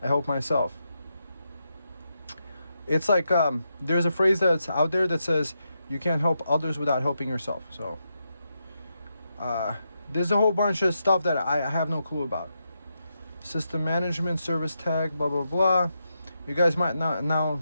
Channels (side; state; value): both; inverted; correlation -0.84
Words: I help myself. It's like there's a phrase that's out there that says you can't help others without helping yourself. So there's a whole bunch of stuff that I have no clue about. System management, service tag, blah blah blah. You guys might not now